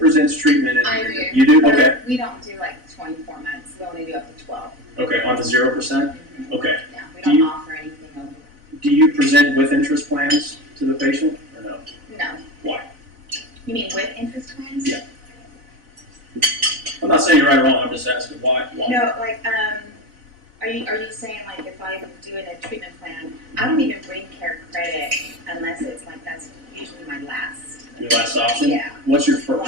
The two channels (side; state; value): left; late; 4.0 ms